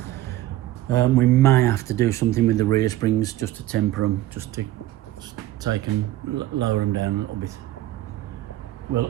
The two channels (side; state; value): left; quieter; 14.8 dB